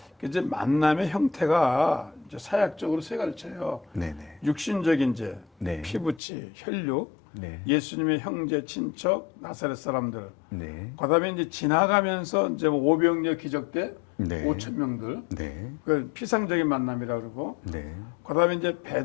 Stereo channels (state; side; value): drops out; right; at 6.2 s